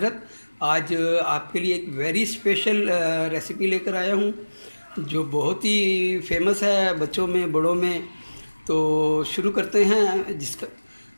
आज आपके लिए एक वेरी स्पेशल रेसिपी लेकर आया हूं जो बहुत ही फेमस है बच्चों में बड़ों में। तो शुरू करते हैं जिसका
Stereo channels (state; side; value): inverted; both; correlation -1.00